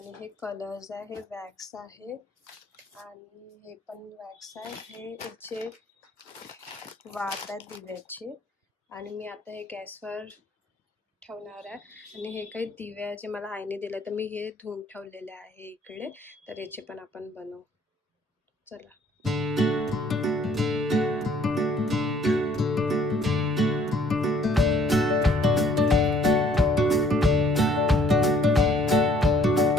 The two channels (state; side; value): normal; both; correlation 0.61